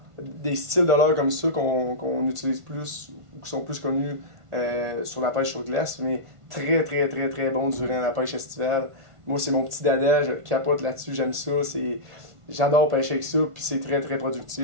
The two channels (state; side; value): late; left; 1.5 ms